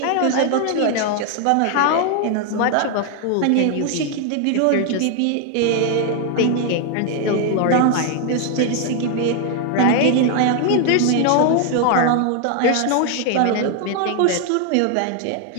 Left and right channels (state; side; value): different; both; correlation 0.00